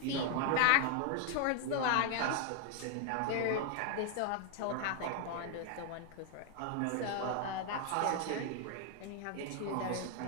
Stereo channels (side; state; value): both; different; correlation 0.00